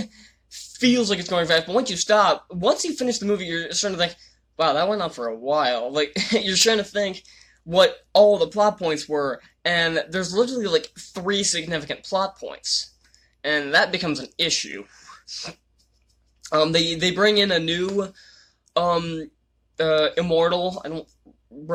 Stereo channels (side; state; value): both; identical; correlation 1.00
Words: feels like it's going fast, but once you finish the movie, you're starting to think, wow, that went on for a while. Like, you're trying to think what all the plot points were, and there's literally, like, 3 significant plot points, and that becomes an issue. They bring in a new, immortal. I don't